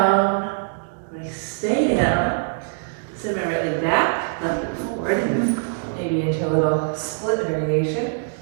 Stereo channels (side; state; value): left; silent; digital silence